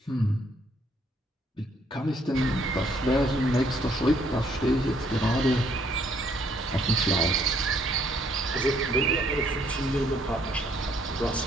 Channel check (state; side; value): normal; both; correlation 0.67